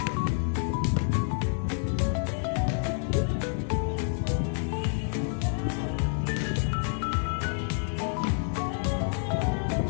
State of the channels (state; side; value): silent; right; 59 dB below the other